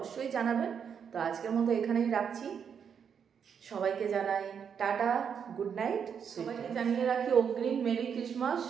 জানাবেন। তো আজকের মতো এখানেই রাখছি। সবাইকে জানাই টাটা, গুড নাইট। সবাইকে জানিয়ে রাখি অগ্রিম মেরি ক্রিসমাস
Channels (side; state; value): left; quieter; 7.3 dB